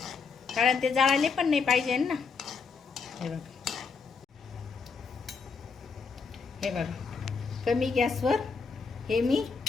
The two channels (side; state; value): right; quieter; 5.2 dB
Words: कारण ते जाळले पण नाही पाहिजे ना. हे बघा हे बघा कमी गॅसवर हे मी